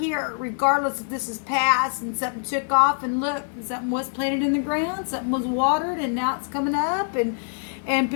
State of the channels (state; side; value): silent; right; digital silence